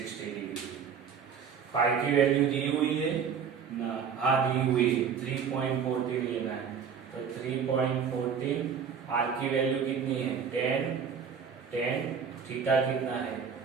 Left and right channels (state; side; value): quieter; left; 6.9 dB